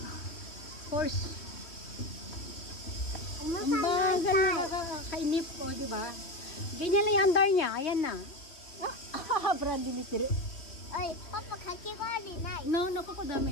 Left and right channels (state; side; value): late; right; 3.3 ms